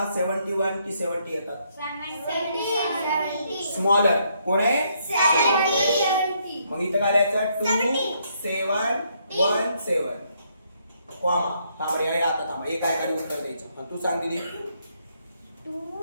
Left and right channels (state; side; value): inverted; both; correlation -0.73